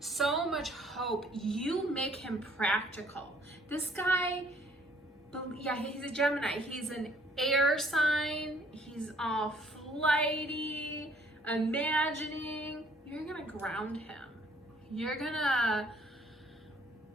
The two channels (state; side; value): normal; both; correlation 0.61